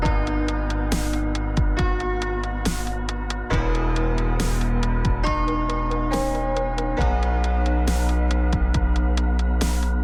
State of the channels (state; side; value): identical; both; correlation 1.00